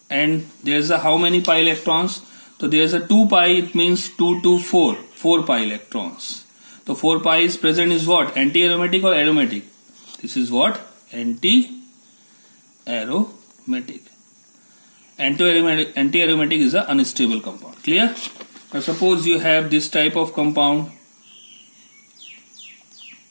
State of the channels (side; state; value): both; inverted; correlation -1.00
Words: And there's a how many pi electrons? So there's a 2 pi, it means 2 to 4, 4 pi electrons. So 4 pi is present is what? Anti-aromatic or aromatic? This is what? Anti-aromatic. Anti-aromatic is an unstable compound. Clear? Now suppose you have this type of compound.